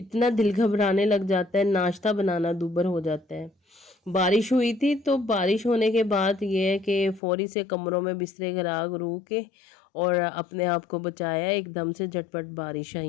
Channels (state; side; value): drops out; right; at 7.2 s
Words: دل گھبرانے لگ جاتا ہے، ناشتہ بنانا دوبر ہو جاتا ہے۔ بارش ہوئی تھی تو بارش ہونے کے بعد یہ ہے کہ فوری سے کمروں میں بسترے گرا گرو کے اور اپنے آپ کو بچایا، ایک دم سے جھٹپٹ بارش